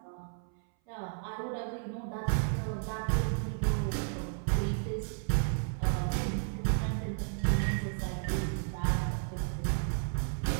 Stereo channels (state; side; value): silent; left; 56 dB below the other